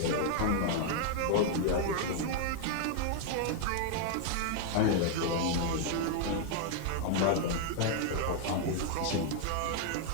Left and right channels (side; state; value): both; different; correlation 0.00